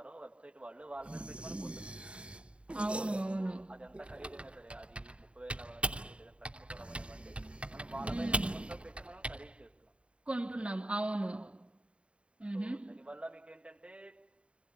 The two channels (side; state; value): left; late; 0.058 ms